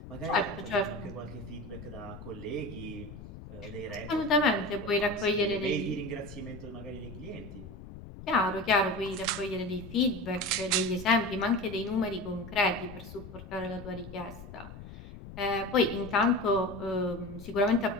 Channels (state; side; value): noise; left; rumble, 14 dB below the sound